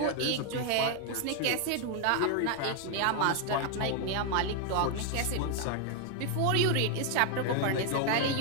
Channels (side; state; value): both; different; correlation 0.00